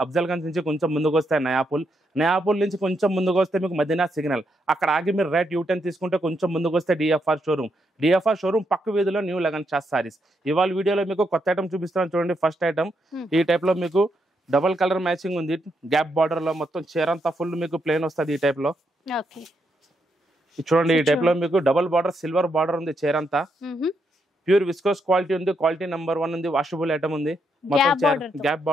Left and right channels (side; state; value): both; normal; correlation 0.79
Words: అఫ్జల్గంజ్ నుంచి కొంచెం ముందుకు వస్తే నయాపూల్ నుంచి కొంచెం ముందుకు వస్తే మీకు మదీనా సిగ్నల్, అక్కడ ఆగి మీరు రైట్ యూటర్న్ తీసుకుంటే కొంచెం ముందుకు వస్తే డిఎఫ్ఆర్ షోరూమ్ పక్క వీధిలో న్యూ లగన్ షా సారీస్. ఇవాళ వీడియోలో మీకు కొత్త ఐటమ్ చూపిస్తాను చూడండి. ఫస్ట్ ఐటమ్ ఈ టైప్లో మీకు డబల్ కలర్ మ్యాచింగ్ ఉంది. గ్యాప్ బార్డర్ లో మొత్తం చీరంతా ఫుల్ మీకు ప్లేన్ వస్తుంది. ఈ టైప్ లో చూడండి. ఈ టైప్ లో మీకు డబల్ బార్డర్, సిల్వర్ బార్డర్ ఉంది. చీరంతా ప్యూర్ విస్కోస్ క్వాలిటీ ఉంది. క్వాలిటీ నెంబర్ 1 ఉంది. వాషబుల్ ఐటమ్ ఉంది. మొత్తం గ్యాప్